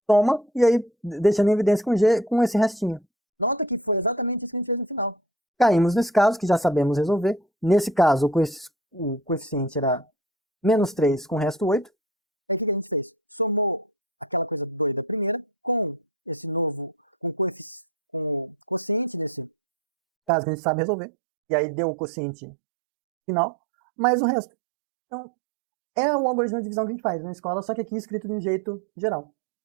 toma, e aí deixando em evidência com G, com esse restinho. Nota que foi exatamente isso que a gente fez no final. Caímos nesse caso, que já sabemos resolver. Nesse caso, o coeficiente era menos 3 com o resto 8. Caso que a gente sabe resolver. E aí deu o quociente final. mais o resto. Então, é o algoritmo de divisão que a gente faz na escola, só que aqui escrito de um jeito geral.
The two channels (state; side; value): drops out; left; at 20.3 s